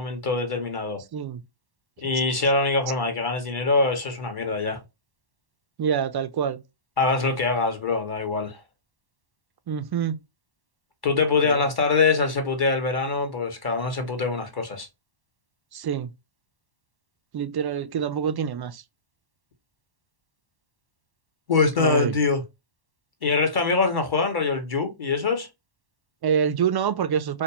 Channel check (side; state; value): left; late; 1.1 ms